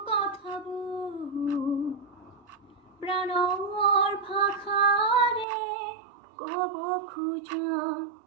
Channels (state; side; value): drops out; left; at 5.5 s